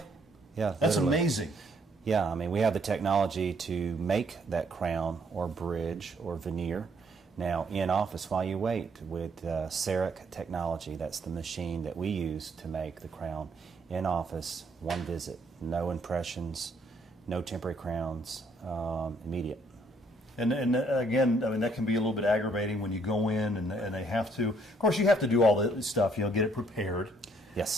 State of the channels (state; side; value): normal; both; correlation 0.67